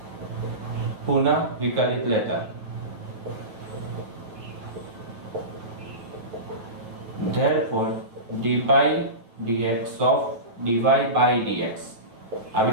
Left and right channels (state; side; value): late; left; 9.6 ms